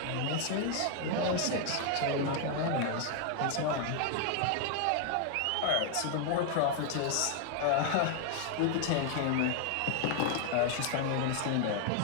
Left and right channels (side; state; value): both; different; correlation 0.00